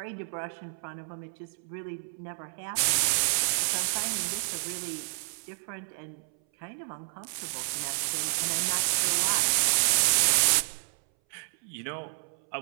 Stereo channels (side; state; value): left; silent; 58 dB below the other